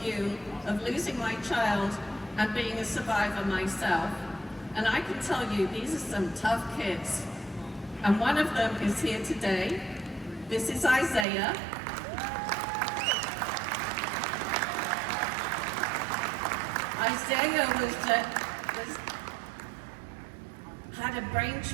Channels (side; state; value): left; drops out; at 11.2 s